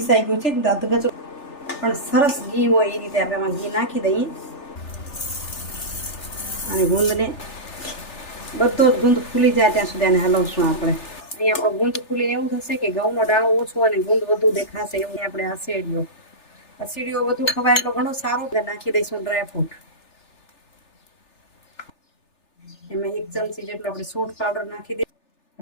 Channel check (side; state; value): right; late; 3.4 ms